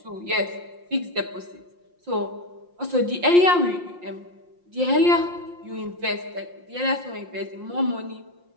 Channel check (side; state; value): left; late; 5.7 ms